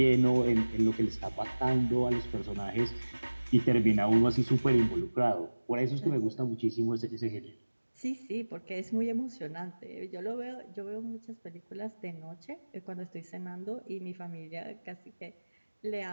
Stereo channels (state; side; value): inverted; both; correlation -1.00